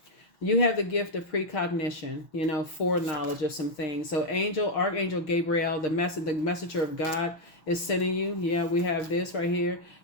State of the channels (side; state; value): right; late; 6.2 ms